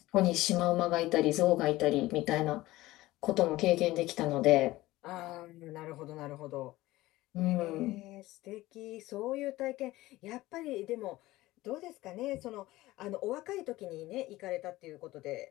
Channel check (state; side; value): quieter; right; 17.8 dB